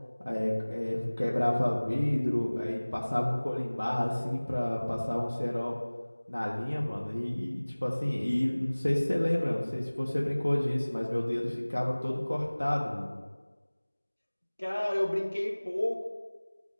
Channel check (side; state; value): both; inverted; correlation -1.00